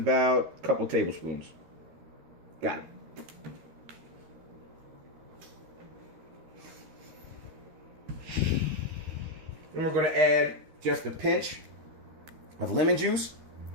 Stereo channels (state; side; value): late; left; 13 ms